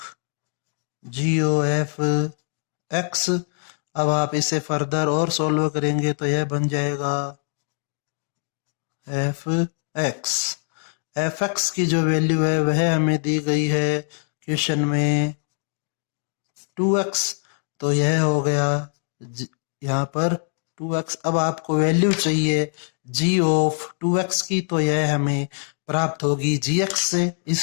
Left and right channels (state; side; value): silent; right; digital silence